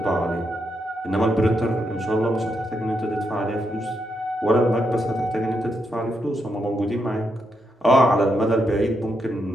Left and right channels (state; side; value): normal; both; correlation 0.81